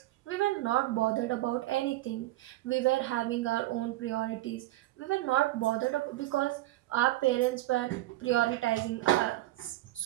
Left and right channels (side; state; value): left; quieter; 16.8 dB